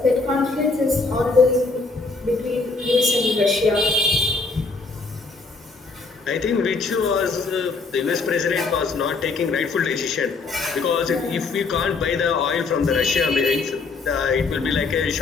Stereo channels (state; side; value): quieter; right; 4.0 dB